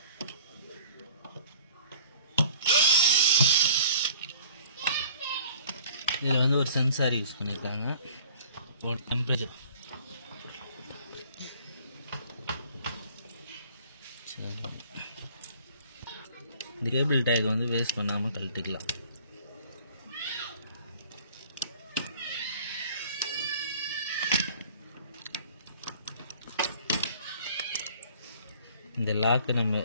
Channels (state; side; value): inverted; both; correlation -0.51